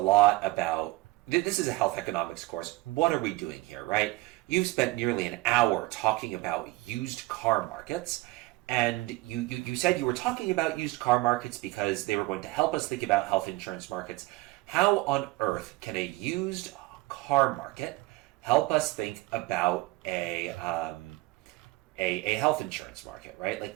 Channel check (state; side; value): quieter; left; 20.6 dB